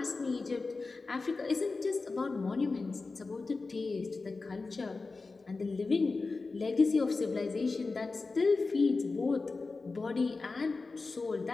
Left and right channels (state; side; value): quieter; right; 3.9 dB